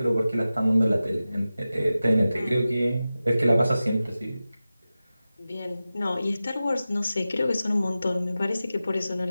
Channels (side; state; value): both; inverted; correlation -0.95